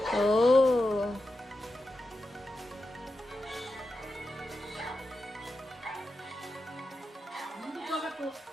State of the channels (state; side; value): normal; both; correlation 0.90